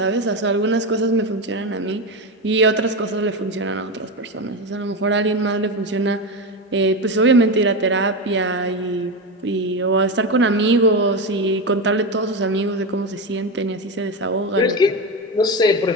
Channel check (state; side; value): normal; both; correlation 0.16